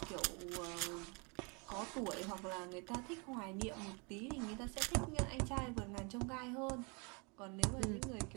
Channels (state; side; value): quieter; left; 32.1 dB